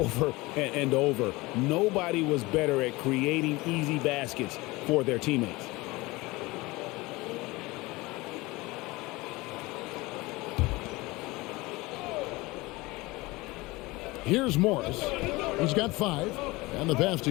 and over. Nobody was better at creating easy baskets for their teammates. Here's Morris. He's got 5. And the pass to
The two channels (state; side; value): quieter; right; 21.9 dB